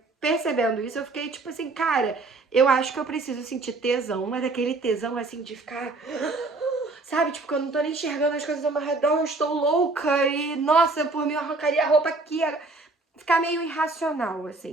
percebendo isso, eu fiquei tipo assim, cara, eu acho que eu preciso sentir tesão, mas aquele tesão assim de ficar... Sabe, tipo, que eu não tô nem enxergando as coisas ao meu redor, eu estou louca e, nossa, por mim eu arrancaria a roupa aqui. Ficar meio irracional,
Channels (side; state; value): left; quieter; 3.4 dB